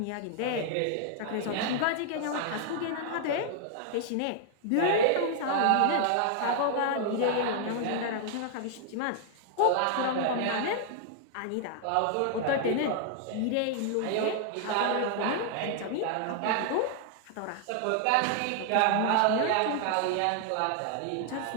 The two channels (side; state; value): both; different; correlation 0.00